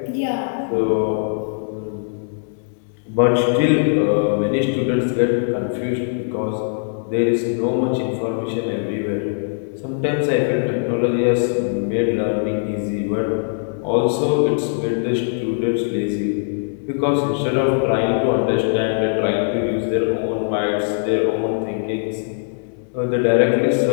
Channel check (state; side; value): silent; right; 65 dB below the other